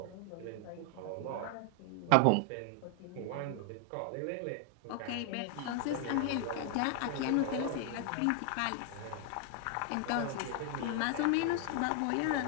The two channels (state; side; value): different; both; correlation 0.00